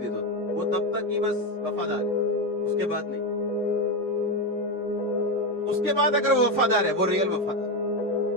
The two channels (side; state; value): both; normal; correlation 0.12